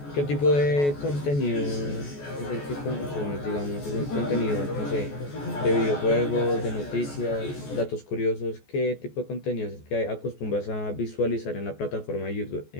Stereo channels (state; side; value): late; right; 14 ms